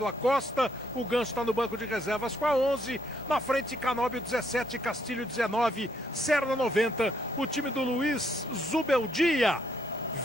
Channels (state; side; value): normal; both; correlation 0.72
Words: Acosta, o Ganso está no banco de reservas com a 11, na frente Canóbio 17, Castilho 19, Serna 90, o time do Luiz Zubeldia,